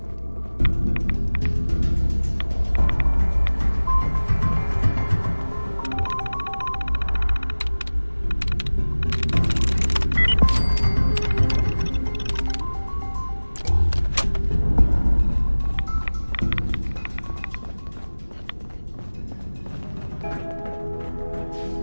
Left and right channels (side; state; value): both; inverted; correlation -1.00